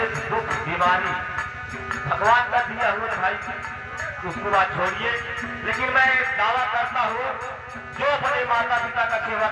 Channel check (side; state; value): both; identical; correlation 1.00